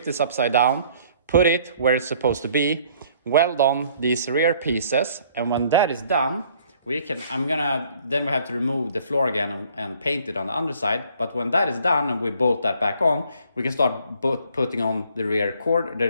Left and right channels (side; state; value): both; inverted; correlation -0.59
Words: this upside down, put it where it's supposed to be, weld on these rear pieces. And when that is done, then we have to remove the floor again and paint it on the underside. But when that is done and we bolt that back on, we can start putting on the